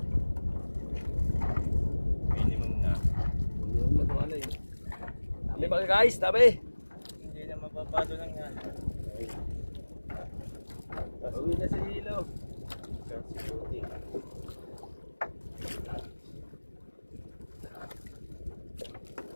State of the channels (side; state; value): both; inverted; correlation -1.00